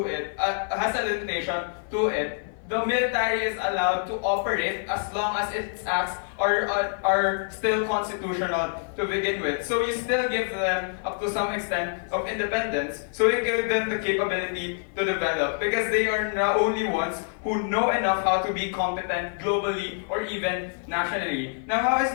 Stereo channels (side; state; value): right; silent; 57 dB below the other